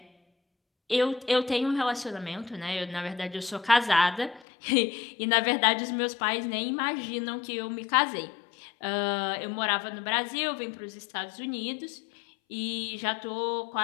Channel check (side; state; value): right; drops out; at 4.5 s